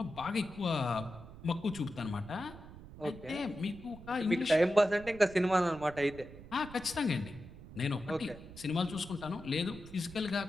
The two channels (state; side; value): noise; right; rumble, 16 dB below the sound